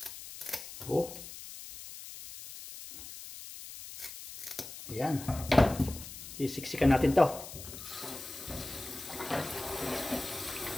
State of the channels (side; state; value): left; noise; hiss, 12 dB below the sound